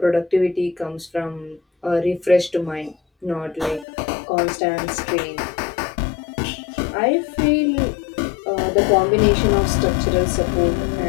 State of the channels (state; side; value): drops out; right; at 3.9 s